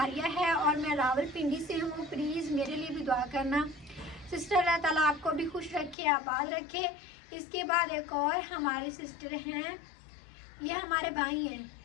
है और मैं रावलपिंडी से हूँ, प्लीज़ मेरे लिए भी दुआ करना। सिस्टर अल्लाह ताला आपको भी खुश रखे, आबाद रखे। इसके बाद एक और हमारे सिस्टर हैं, ये हमारे भाई हैं,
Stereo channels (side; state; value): right; drops out; at 6.0 s